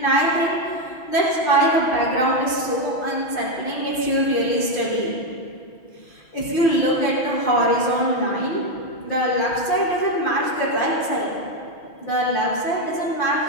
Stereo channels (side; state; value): right; late; 6.1 ms